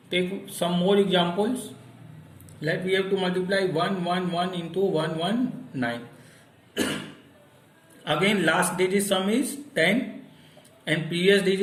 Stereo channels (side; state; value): both; identical; correlation 1.00